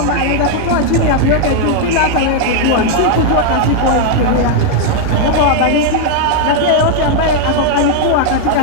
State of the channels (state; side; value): different; both; correlation 0.00